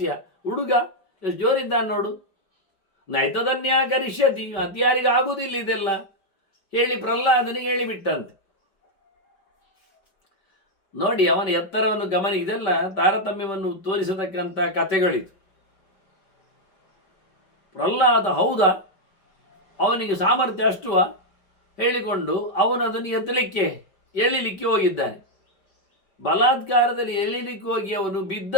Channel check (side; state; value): right; late; 5.3 ms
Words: ಹುಡುಗ ಎಷ್ಟು ಜೋರಿದ್ದಾನೆ ನೋಡು. ನೈತದನ್ಯ ಕರಿಷ್ಯತಿ, ಅತ್ಯಾರಿಗೆ ಆಗುವುದಿಲ್ಲ ಇದೆಲ್ಲ ಹೇಳಿ ಪ್ರಹ್ಲಾದನಿಗೆ ಹೇಳಿಬಿಟ್ಟಂತೆ. ನೋಡಿ ಅವನ ಎತ್ತರವನ್ನು ಗಮನ, ಇದೆಲ್ಲ ತಾರತಮ್ಯವನ್ನು ತೋರಿಸತಕ್ಕಂಥ ಕಥೆಗಳಿದು. ಪ್ರಹ್ಲಾದ ಹೌದಾ, ಅವನಿಗೆ ಸಾಮರ್ಥ್ಯ ಅಷ್ಟುವ ಹೇಳಿಕೊಂಡು ಅವನದನ್ನು ಎಳಿಲಿಕ್ಕೆ ಹೋಗಿದ್ದಾನೆ. ಬಲಾತ್ಕಾರದಲ್ಲಿ ಎಳಿಲಿಕ್ಕೆ ಹೋಗಿ ಅವನು